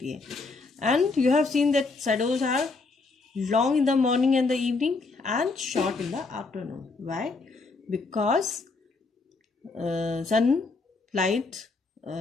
है. And you have seen that shadows are long in the morning and the evening and short in the afternoon. Why? Because sun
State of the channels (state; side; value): quieter; right; 3.9 dB